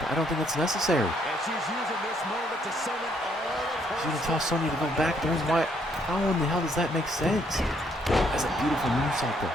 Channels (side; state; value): both; normal; correlation 0.70